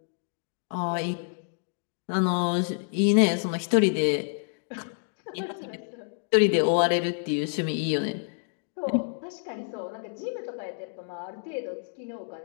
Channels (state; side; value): silent; right; 59 dB below the other